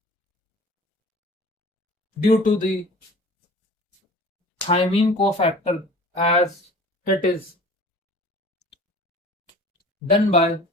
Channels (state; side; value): normal; both; correlation 0.44